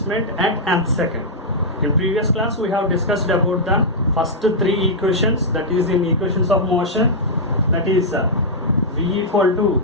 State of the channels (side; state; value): both; normal; correlation -0.08